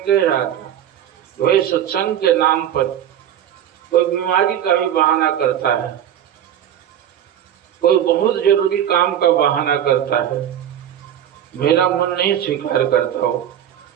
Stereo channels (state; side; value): quieter; left; 10.2 dB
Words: रहा था वही सत्संग के नाम पर कोई बीमारी का भी बहाना करता है, कोई बहुत जरूरी काम का बहाना करता है, मेरा मन नहीं स्वीकार करता हो,